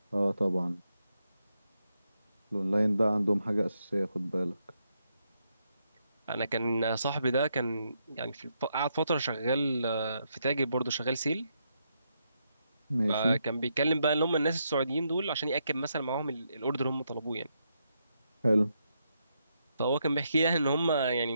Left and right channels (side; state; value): both; inverted; correlation -0.80